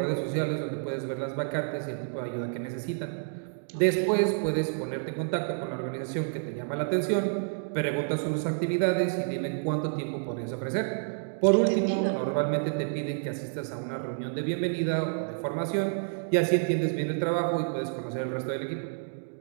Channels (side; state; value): left; silent; digital silence